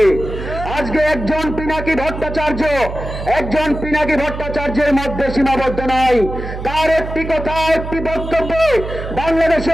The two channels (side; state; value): right; noise; hum, 8 dB below the sound